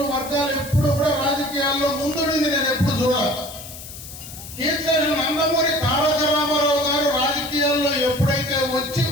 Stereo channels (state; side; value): noise; left; hiss, 13 dB below the sound